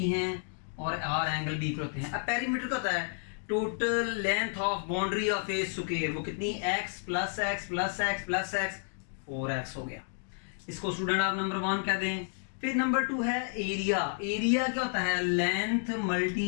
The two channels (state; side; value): silent; right; 57 dB below the other